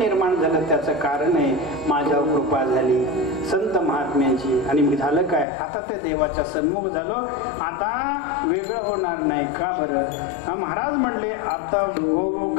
झालं, त्याचं कारण आहे माझ्यावर कृपा झाली संत महात्म्यांची. आणि मी झालं काय, आता ते देवाच्या सन्मुख झालो, आता वेगळं होणार नाही. का बरं? महाराज म्हणले, आता हो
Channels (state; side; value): drops out; right; at 5.5 s